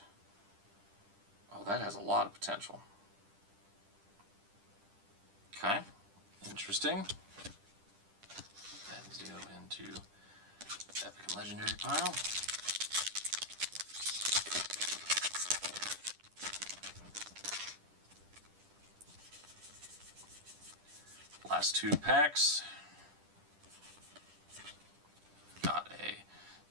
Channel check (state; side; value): late; left; 10 ms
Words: Oh, that has a lot of potential. Okay, interesting. Let's go into Epic and Legendary pile. Last 2 packs. Got a